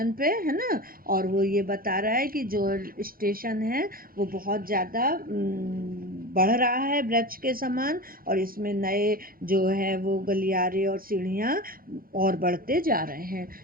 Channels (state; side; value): late; left; 0.42 ms